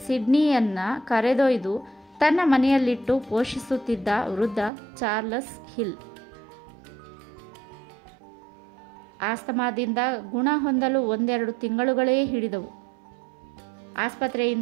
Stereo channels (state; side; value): drops out; left; at 4.7 s